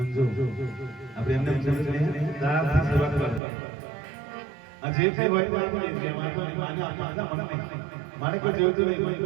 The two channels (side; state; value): left; drops out; at 3.4 s